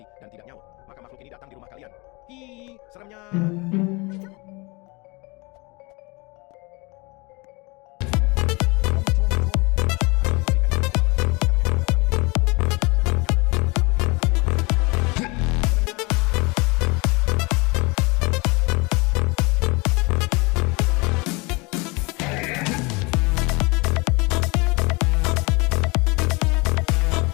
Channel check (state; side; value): quieter; right; 27.1 dB